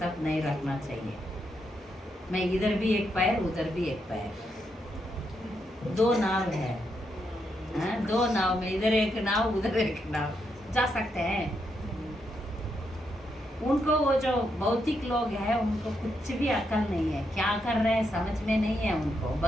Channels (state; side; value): normal; both; correlation 0.81